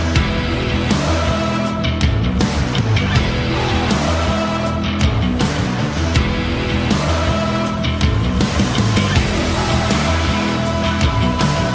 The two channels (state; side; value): identical; both; correlation 1.00